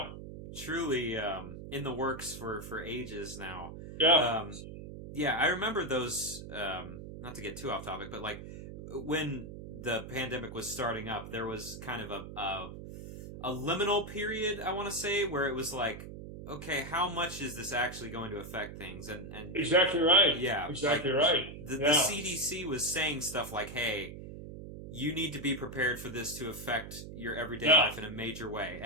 Truly in the works for ages now. Yeah. Yeah, I remember those. Not to get too off topic, but like when the pandemic was starting up, there was kind of a liminal period, I want to say, where it was like, okay, how much is this actually going to affect things? And exactly right. Yeah, exactly like, right. The CDC was saying stuff like, hey, you need to be prepared for this to affect your everyday life in a major way.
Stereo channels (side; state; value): right; noise; hum, 11 dB below the sound